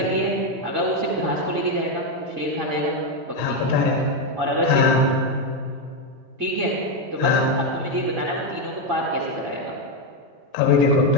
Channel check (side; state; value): left; late; 2.1 ms